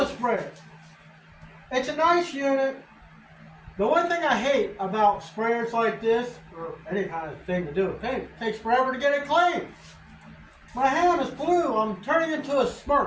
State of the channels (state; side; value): identical; both; correlation 1.00